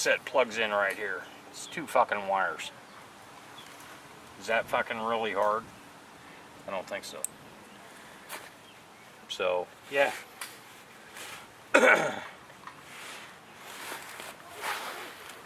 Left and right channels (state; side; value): identical; both; correlation 1.00